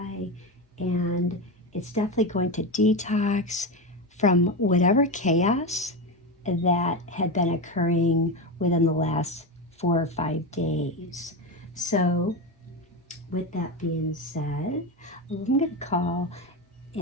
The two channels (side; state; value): both; normal; correlation 0.16